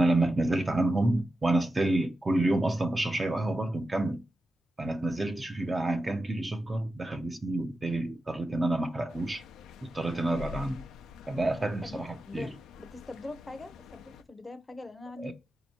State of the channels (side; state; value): both; normal; correlation 0.91